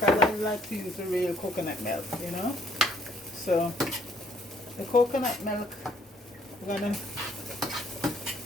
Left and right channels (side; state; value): both; normal; correlation 0.64